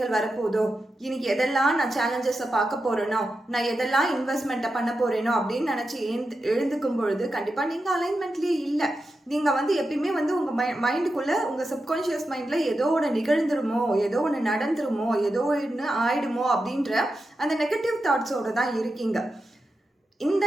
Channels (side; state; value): both; normal; correlation 0.89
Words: வரப்போதோ, இன்னைக்கு எதெல்லாம் நான் சேலஞ்சஸை பார்க்க போறேனோ, நான் எதெல்லாம் இன்வெஸ்ட்மெண்ட்டை பண்ண போறேனோ அப்படின்னு நினச்சி எழுந்துக்கும் பொழுது கண்டிப்பாக நீங்கள் அலைன்மெண்ட்லேயே இல்லை. நீங்கள் வந்து எப்பயுமே வந்து உங்கள் மைண்டுக்குள்ளே, உங்கள் சப்கான்ஷியஸ் மைண்டில் ஏதோ ஒன்று நிகழ்ந்துருமோ, ஏதோ ஒன்று நடந்துருமோ, ஏதோ ஒன்று ஆயிடுமோ அப்படின்ற அந்த நெகட்டிவ் தாட்ஸோடு தான் இருக்கீங்க. இந்த